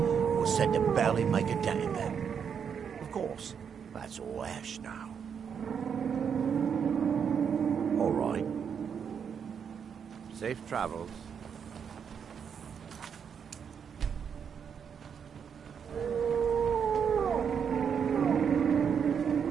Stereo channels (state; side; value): quieter; left; 7.2 dB